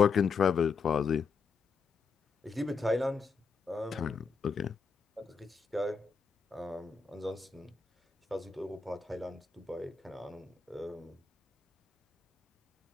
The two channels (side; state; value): right; quieter; 5.2 dB